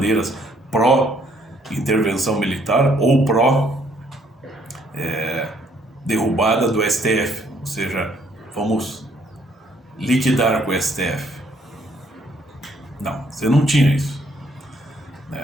pró-intervenção militar ou pró-derrubada do STF. Ou seja, vamos liquidar com o STF. Não, você não tinha isso,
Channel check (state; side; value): normal; both; correlation 0.67